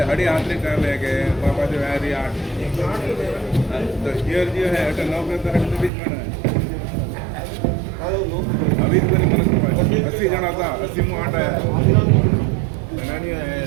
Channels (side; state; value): left; drops out; at 5.9 s